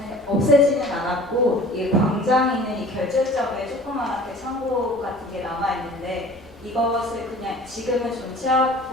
네. 없애지는 않았고 이 광장에 있는 이 결절점에 조그맣게 창고 같은 게 남아 있는데 이것을 그냥 지금은 좀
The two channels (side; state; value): both; normal; correlation 0.45